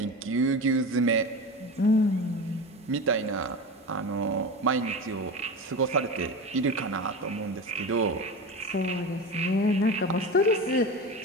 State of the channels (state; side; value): normal; both; correlation 0.27